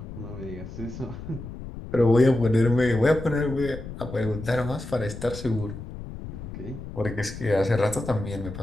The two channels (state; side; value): noise; left; rumble, 11 dB below the sound